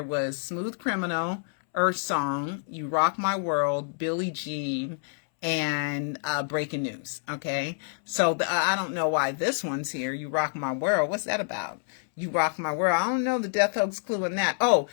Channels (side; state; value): right; silent; 60 dB below the other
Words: was Smooth Criminal, Earth Song, You Rock My World, Billie Jean, and Breaking News. Okay, so I don't know why this one's here, You Rock My World. What's that about? You Rock My World. I don't know the death hoax clue in that. Oh,